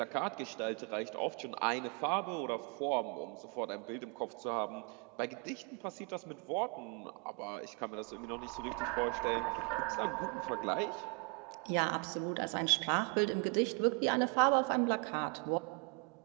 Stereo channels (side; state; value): left; quieter; 35.4 dB